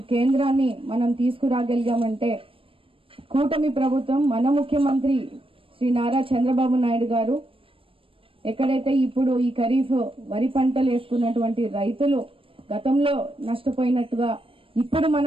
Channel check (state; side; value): late; left; 0.26 ms